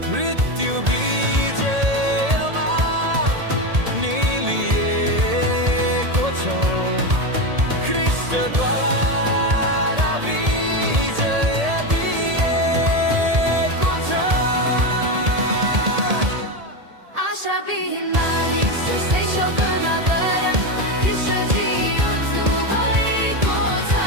मृत्यु विजयमा निलिएको छ, ख्रीष्टद्वारा विजय दिएको छ। आशाविहीन मानिस जस्तै शोक नगर, कृष्णजी उठ्नु भएको छ।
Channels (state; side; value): late; left; 1.8 ms